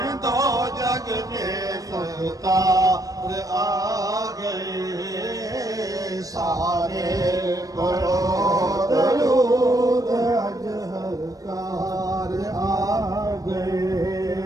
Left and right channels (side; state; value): left; late; 0.17 ms